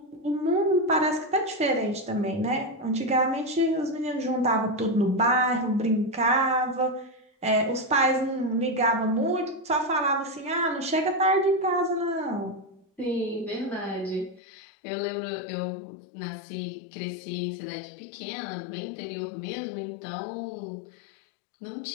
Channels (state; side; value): drops out; right; at 14.4 s